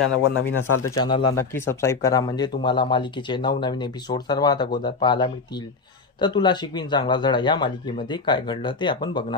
नवीन असाल तर चॅनलला नक्की सबस्क्राईब करा, म्हणजे तुम्हाला मालिकेचे नवनवीन एपिसोड सर्वात अगोदर पाहायला मिळतील. तर तुला शिकवीन चांगला धडा या मालिकेमध्ये काय घडलं ते आपण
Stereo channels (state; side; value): quieter; right; 4.4 dB